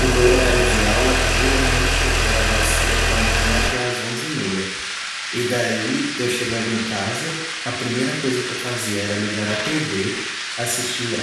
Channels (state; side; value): identical; both; correlation 1.00